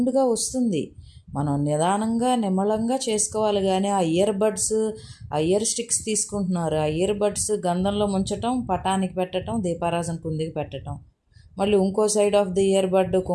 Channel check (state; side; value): identical; both; correlation 1.00